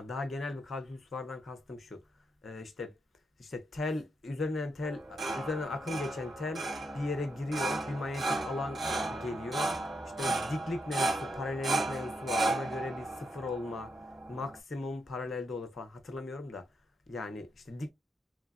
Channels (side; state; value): both; normal; correlation 0.81